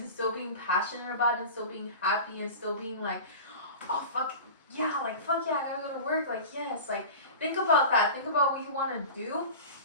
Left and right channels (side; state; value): both; inverted; correlation -0.33